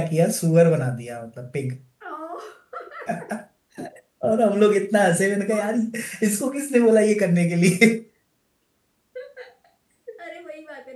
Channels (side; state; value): both; identical; correlation 1.00